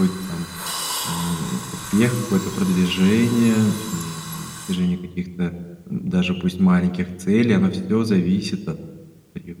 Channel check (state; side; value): identical; both; correlation 1.00